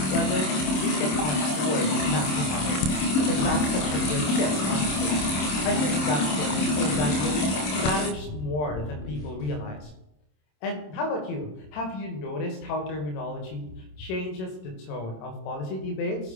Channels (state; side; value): late; right; 27 ms